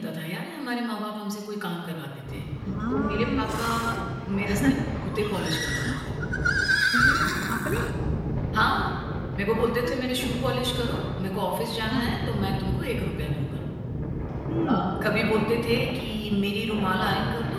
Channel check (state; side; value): identical; both; correlation 1.00